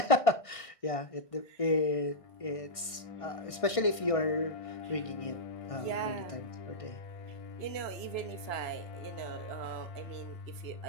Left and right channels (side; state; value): right; late; 1.6 ms